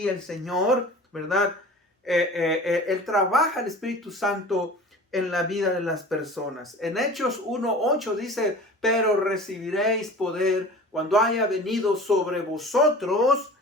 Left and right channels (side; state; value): both; normal; correlation 0.40